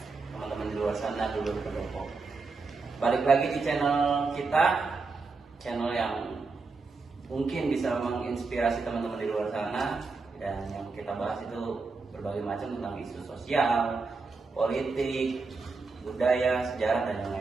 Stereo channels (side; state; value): left; quieter; 4.2 dB